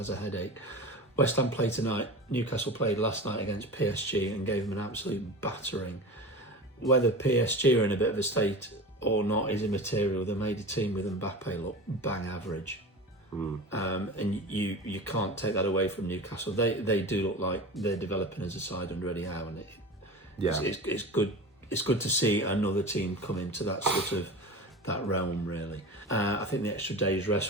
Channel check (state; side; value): normal; both; correlation 0.32